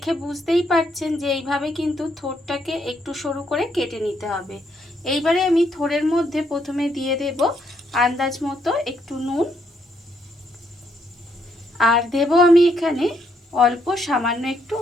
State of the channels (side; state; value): both; normal; correlation 0.74